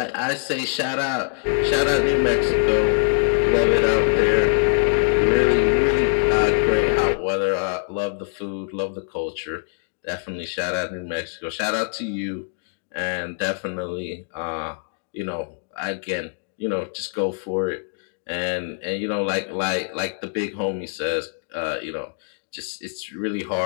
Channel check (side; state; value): right; silent; digital silence